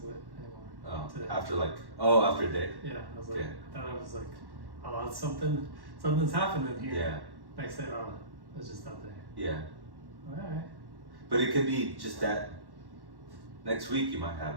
to it anymore. Oh, today. after a day? Yeah, I was like, Okay. I thought I was like, oh, that's something's happening here. Yeah. Next day, oh, it's just that day. Yeah. Alright. But it could be just that next week you might have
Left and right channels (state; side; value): late; left; 1.1 ms